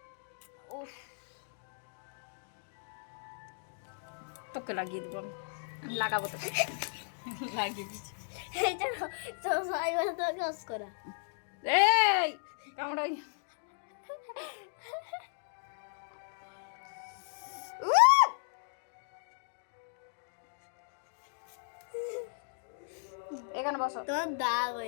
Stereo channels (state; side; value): silent; right; digital silence